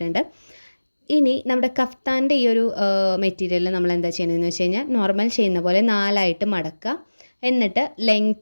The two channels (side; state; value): both; inverted; correlation -1.00